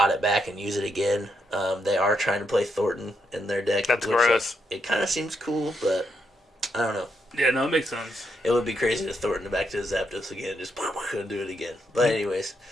it back and use it again. They are trying to play Thornton in their deck. That's gross. It kind of seems cool, but I don't know. Yeah, no, it makes sense. It would be crazy to Thornton back to Zapdos again, just do it again. But anyways.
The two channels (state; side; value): normal; both; correlation 0.80